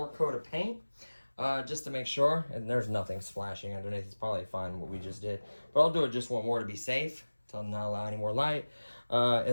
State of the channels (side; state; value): both; inverted; correlation -1.00